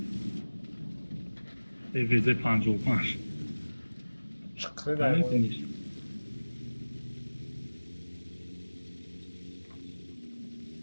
ویزه 55 چقدر دایمون نمیتونیش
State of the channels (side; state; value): both; inverted; correlation -1.00